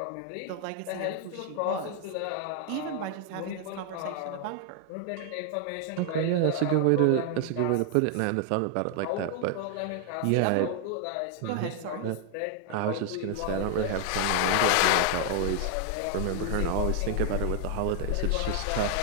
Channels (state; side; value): different; both; correlation 0.00